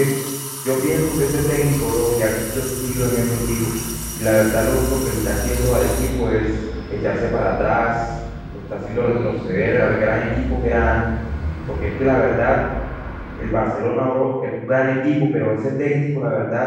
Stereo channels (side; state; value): both; identical; correlation 1.00